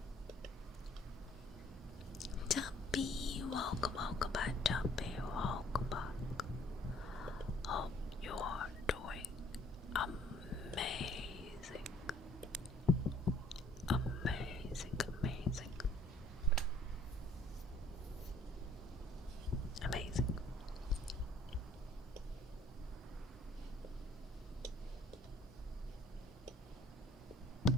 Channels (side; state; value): both; normal; correlation 0.59